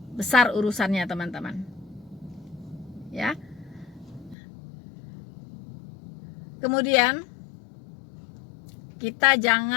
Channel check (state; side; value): drops out; right; at 4.4 s